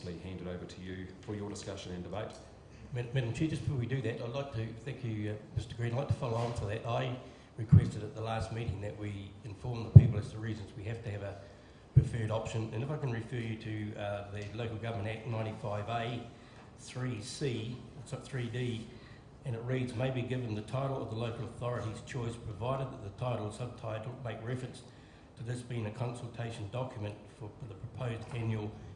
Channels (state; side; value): identical; both; correlation 1.00